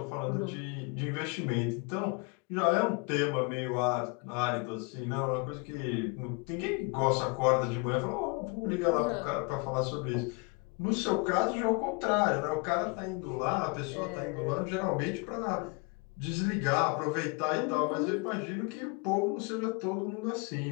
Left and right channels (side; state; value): right; quieter; 31.5 dB